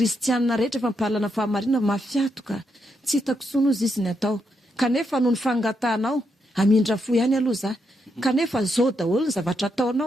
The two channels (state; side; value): normal; both; correlation 0.81